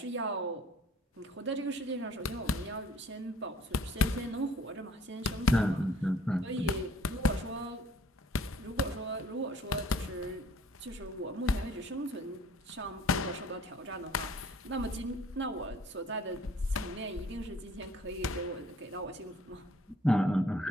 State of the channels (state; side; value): normal; both; correlation 0.57